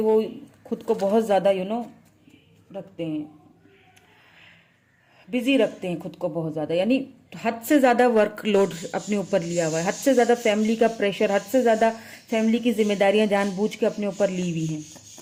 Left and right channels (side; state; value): both; identical; correlation 1.00